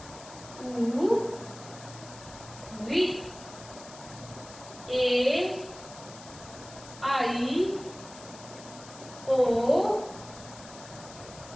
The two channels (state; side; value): noise; left; hiss, 17 dB below the sound